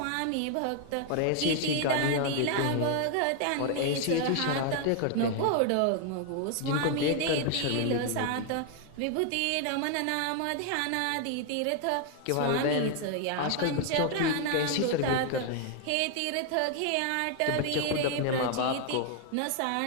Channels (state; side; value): different; both; correlation 0.00